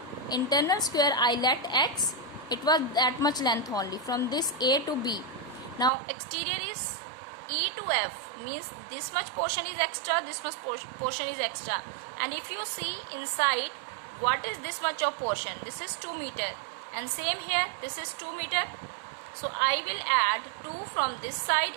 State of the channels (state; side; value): drops out; left; at 5.9 s